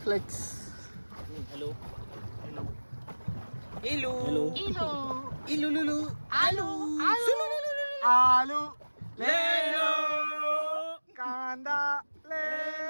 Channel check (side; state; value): both; inverted; correlation -1.00